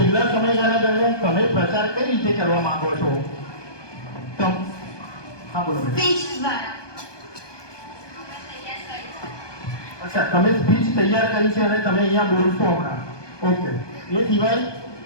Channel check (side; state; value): right; late; 1.2 ms